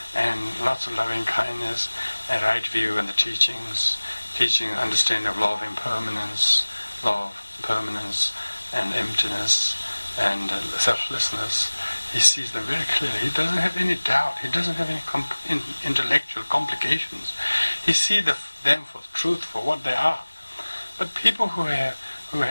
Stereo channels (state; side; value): inverted; both; correlation -1.00